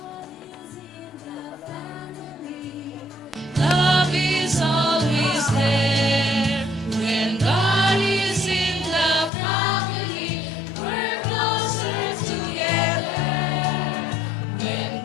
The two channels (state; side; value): drops out; right; at 9.3 s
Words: Love is always there when God is in the family. We're closer together when